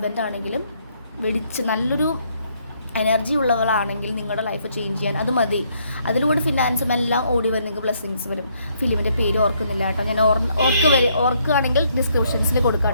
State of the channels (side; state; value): both; inverted; correlation -0.70